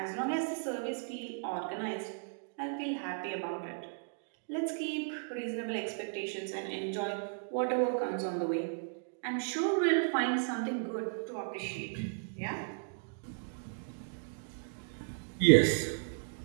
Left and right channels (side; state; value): left; silent; digital silence